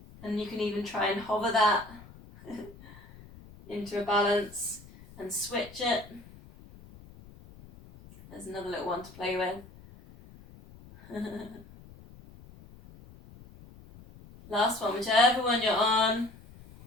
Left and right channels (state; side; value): noise; left; rumble, 20 dB below the sound